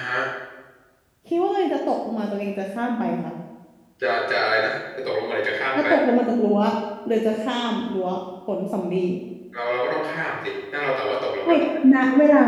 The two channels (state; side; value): identical; both; correlation 1.00